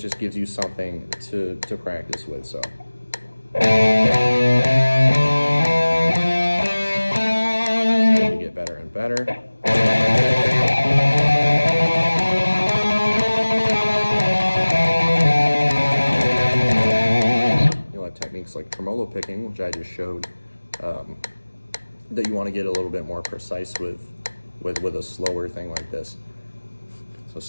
gives you something to practice with. So you get better and better. tremolo picking, which I just showed, that you want to get a little bit more precise with a slower thing like this. So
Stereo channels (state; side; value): inverted; both; correlation -1.00